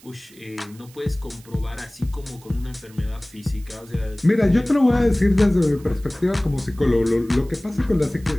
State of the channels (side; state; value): right; noise; hiss, 25 dB below the sound